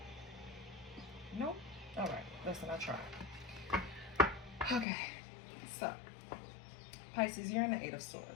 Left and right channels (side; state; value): right; drops out; at 4.9 s